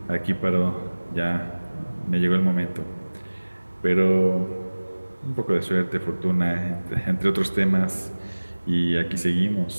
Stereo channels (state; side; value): inverted; both; correlation -1.00